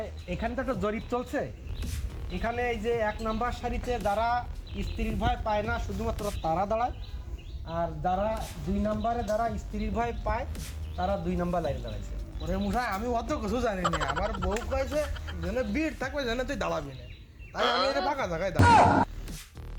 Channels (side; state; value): both; identical; correlation 1.00